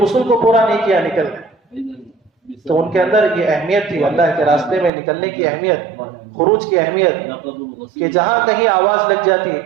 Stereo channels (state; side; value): drops out; left; at 4.9 s